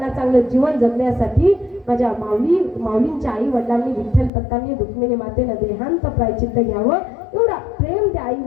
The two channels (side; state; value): right; drops out; at 4.3 s